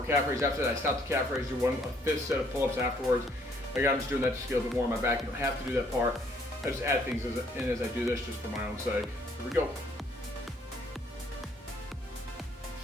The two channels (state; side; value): normal; both; correlation 0.65